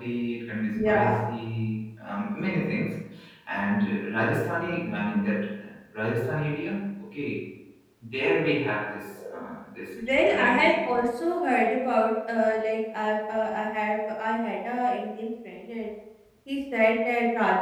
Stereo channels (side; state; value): both; identical; correlation 1.00